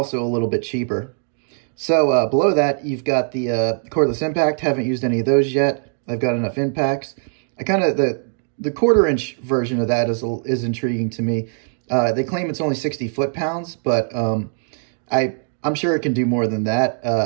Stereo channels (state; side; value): silent; left; 65 dB below the other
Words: a little bit cheaper. So below that, you've got the cordless impact. Haven't used any of those yet. I've got enough impacts. I kind of, the 1/4-inch version of that is intriguing to me. They claim it's only 60 foot-pounds, but I'm sure it can do more than